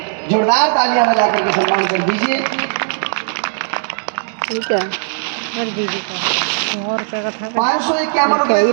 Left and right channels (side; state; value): left; silent; digital silence